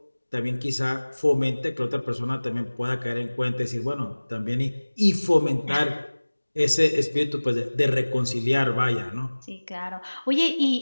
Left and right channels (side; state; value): both; inverted; correlation -1.00